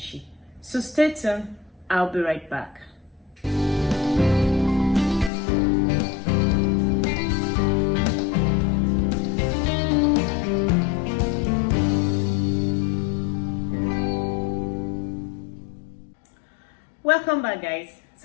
So stay tuned. I'll be right back. Welcome back, guys.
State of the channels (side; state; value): right; drops out; at 5.3 s